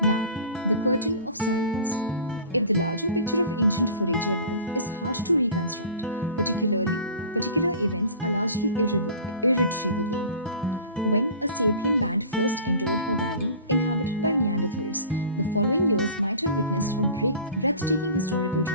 the curtain of silence. If the larger picture of ancient forager life is hard to reconstruct, particular events are largely irretrievable. When a sapien band first entered a valley inhabited by Neanderthals, the following years might have witnessed a breathtaking historical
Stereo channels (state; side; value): inverted; both; correlation -0.40